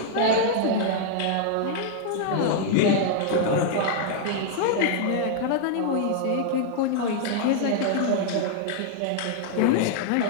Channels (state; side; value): different; both; correlation -0.01